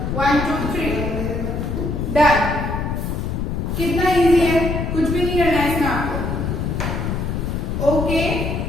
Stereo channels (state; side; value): noise; left; rumble, 2 dB below the sound